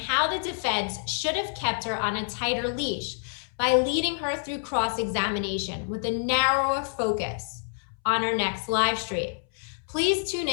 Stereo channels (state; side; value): silent; right; 60 dB below the other